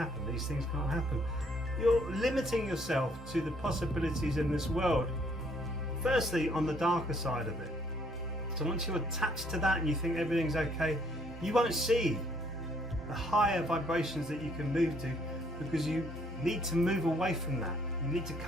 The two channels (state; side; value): normal; both; correlation 0.65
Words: these things can't happen. You're limiting yourself to the possibilities in this world. Firstly, on the darker side of it. So once you're attached to that and you think everything's okay, you won't see the higher vibrations that you can move to, because you need to move away from that. You need to